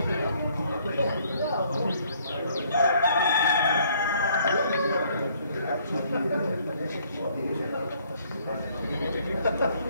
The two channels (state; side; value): inverted; both; correlation -0.63